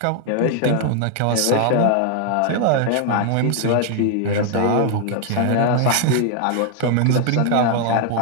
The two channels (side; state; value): both; different; correlation 0.00